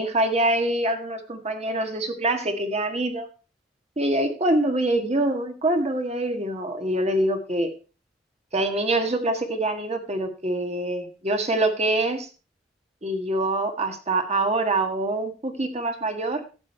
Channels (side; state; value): both; normal; correlation 0.35